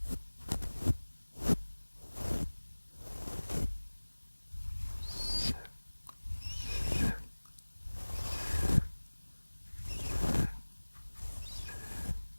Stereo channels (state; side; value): inverted; both; correlation -1.00